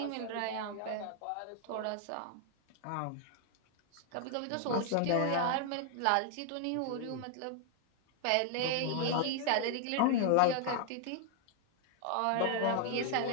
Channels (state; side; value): different; both; correlation 0.00